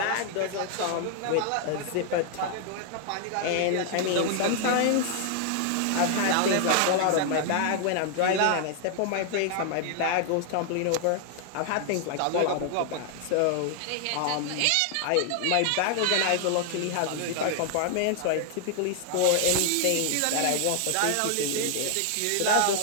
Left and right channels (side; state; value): both; different; correlation 0.00